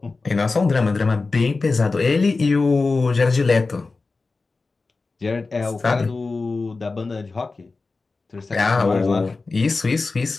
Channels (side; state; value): right; quieter; 3.8 dB